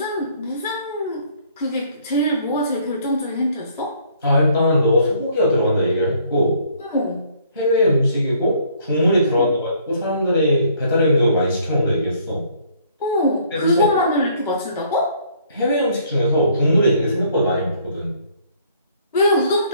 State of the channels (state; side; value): inverted; both; correlation -0.62